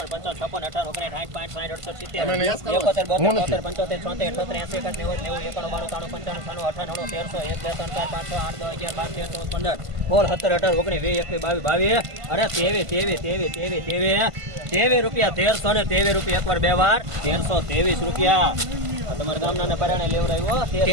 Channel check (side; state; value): left; late; 1.5 ms